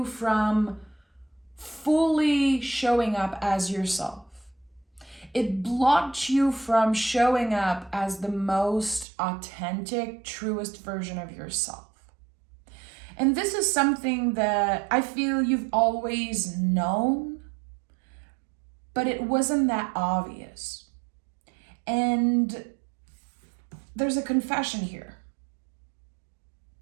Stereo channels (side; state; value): left; drops out; at 9.1 s